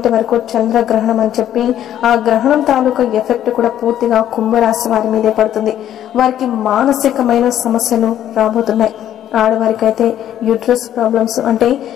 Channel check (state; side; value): quieter; right; 11.2 dB